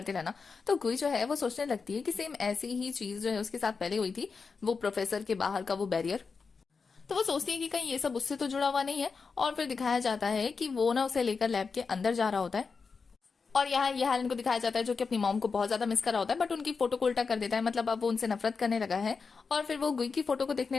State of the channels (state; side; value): quieter; right; 5.0 dB